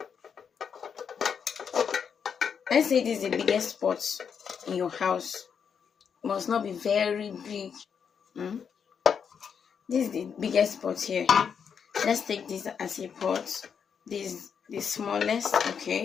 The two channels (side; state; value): right; quieter; 7.0 dB